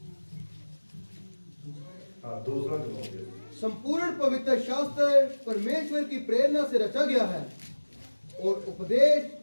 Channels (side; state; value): both; inverted; correlation -1.00